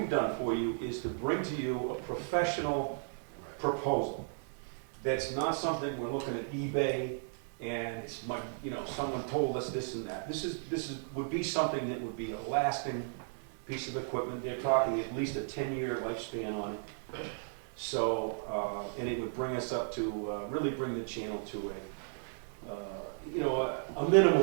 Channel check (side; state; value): left; silent; 55 dB below the other